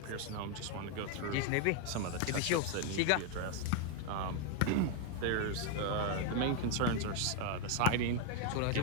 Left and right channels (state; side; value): different; both; correlation 0.01